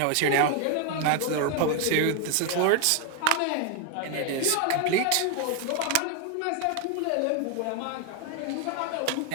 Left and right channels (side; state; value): both; different; correlation 0.01